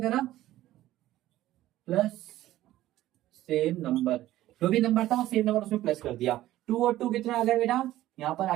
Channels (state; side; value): quieter; left; 14.7 dB